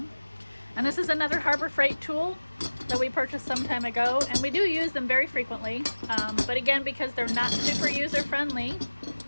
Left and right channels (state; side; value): inverted; both; correlation -1.00